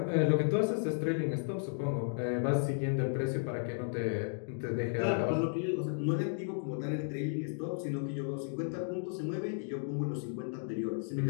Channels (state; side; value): silent; right; digital silence